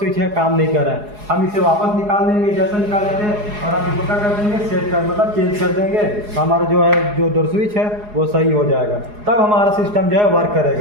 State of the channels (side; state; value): left; late; 4.8 ms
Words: है काम नहीं कर रहा है। हम इसे वापस निकाल देंगे जैसा निकाले थे और हम इसको क्या कर देंगे? सेट कर मतलब चेंज कर देंगे। तो हमारा जो है जो डोर स्विच है वो सही हो जाएगा, तब हमारा सिस्टम जो है वर्क